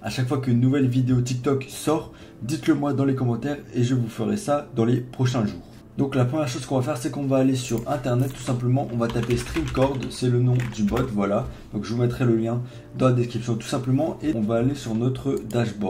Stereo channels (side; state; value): both; identical; correlation 1.00